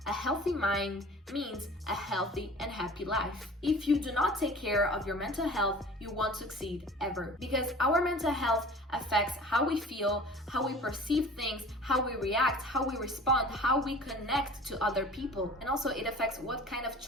A healthy mind means a healthy and happy life. If you do not take care of your mental health, you won't succeed ever. Because our mental health affects how we feel, how we perceive things, how we react, how we respond, how we connect to other people. And also it affects what kind of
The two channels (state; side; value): normal; both; correlation 0.43